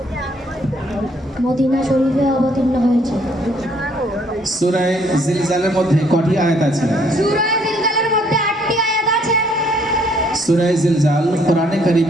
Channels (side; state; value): both; normal; correlation 0.65